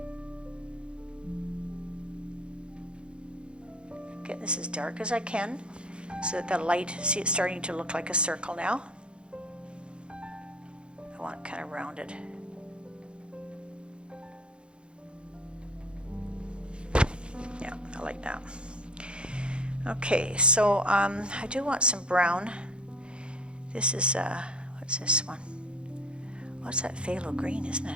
Get this as dark as I can so that the light, see it's starting to look like a circle now. I want it kind of rounded. Yeah, I like that. Okay, so I do want some brown. This is, what's this one? What's that phthalo green, isn't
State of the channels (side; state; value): left; late; 0.055 ms